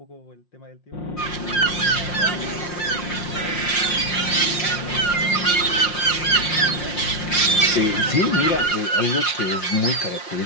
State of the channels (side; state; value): right; late; 5.6 ms